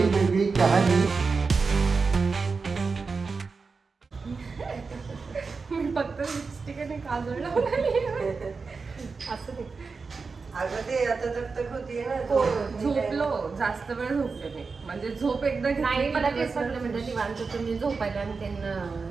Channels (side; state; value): left; quieter; 4.6 dB